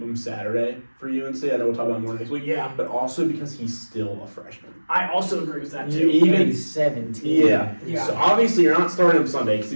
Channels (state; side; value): inverted; both; correlation -1.00